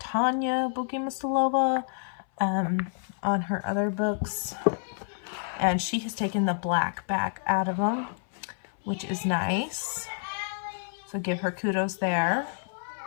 Bogomilova on her other books. And she has taken the black back out of them, which is nice. So give her kudos there.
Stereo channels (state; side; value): silent; right; 59 dB below the other